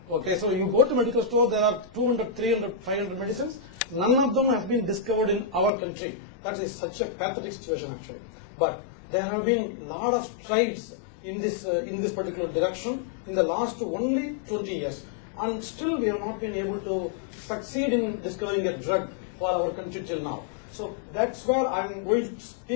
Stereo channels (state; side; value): drops out; right; at 5.7 s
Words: Okay, so you go to medical store, there are 200, 300, 500 medicines. None of them have been discovered in our country. That is such a pathetic situation actually. But there have been a lot of strides in this particular direction in the last only 20 years. And still we have not been able to succeed in discovering a drug for our country till now. So that's where I'm going to